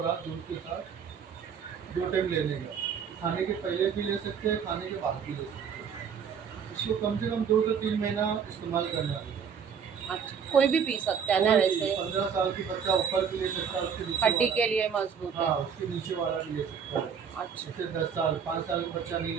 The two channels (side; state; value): left; quieter; 7.0 dB